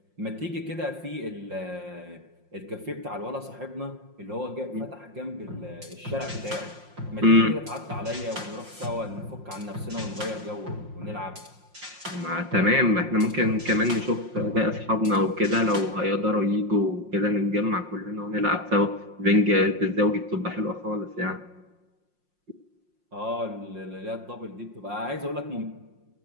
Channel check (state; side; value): late; left; 5.6 ms